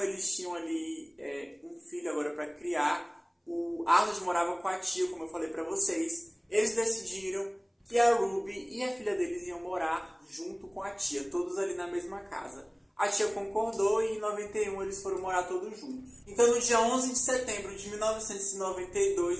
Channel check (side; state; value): both; identical; correlation 1.00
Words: eles tinham ali um filho agora para criar, o Arnold morava com a tia, como eu falei pra vocês. Eles decidiram que a Ruby e a filha deles iam morar junto com a tia, todos ali na mesma casa. A tia concordou e em 91 eles foram morar todos juntos. Então no dia 11 de setembro de